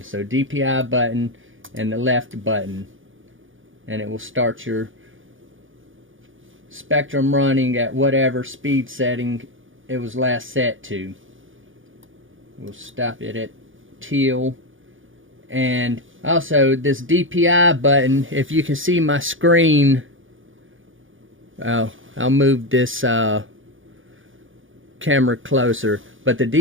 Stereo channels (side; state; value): left; late; 0.57 ms